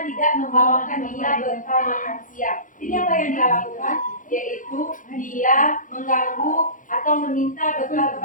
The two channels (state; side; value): late; right; 0.38 ms